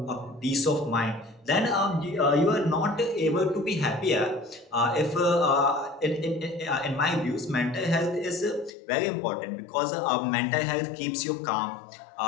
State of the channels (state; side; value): drops out; right; at 8.8 s